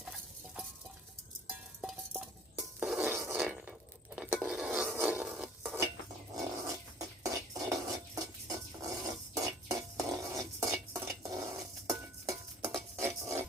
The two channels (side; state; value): both; normal; correlation 0.51